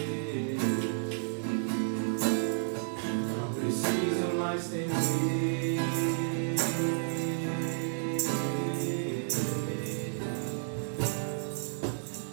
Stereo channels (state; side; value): silent; left; digital silence